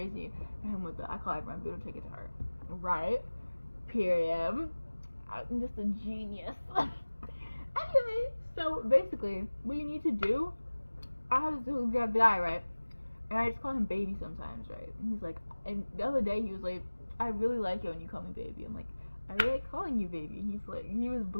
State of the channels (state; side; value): inverted; both; correlation -1.00